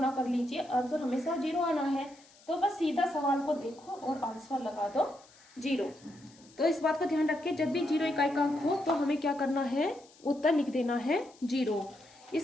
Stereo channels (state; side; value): noise; left; hiss, 26 dB below the sound